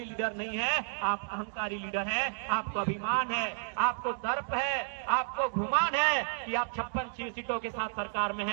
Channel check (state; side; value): silent; left; digital silence